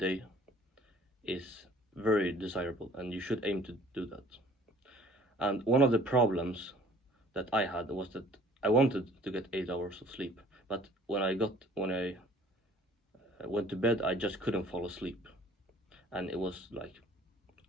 is very desirable, and you should aim to do that. And one of the problems that I had was that I wanted to get 8 hours of sleep, but when I went to bed, I just couldn't fall asleep, and it was like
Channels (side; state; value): both; normal; correlation 0.53